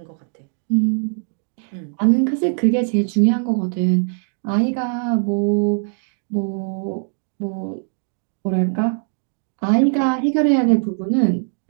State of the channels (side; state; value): left; silent; 56 dB below the other